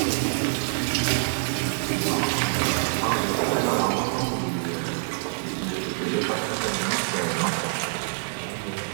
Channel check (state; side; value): silent; left; digital silence